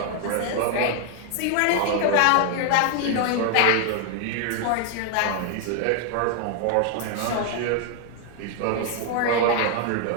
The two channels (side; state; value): both; different; correlation 0.00